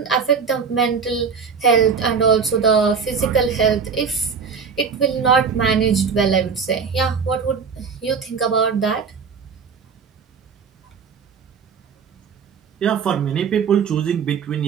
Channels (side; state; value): left; quieter; 6.0 dB